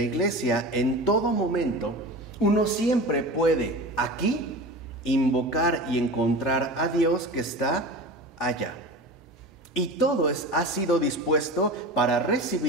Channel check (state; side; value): normal; both; correlation 0.32